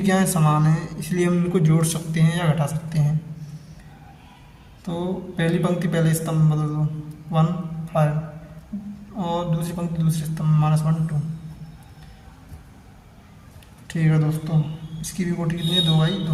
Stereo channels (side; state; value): both; identical; correlation 1.00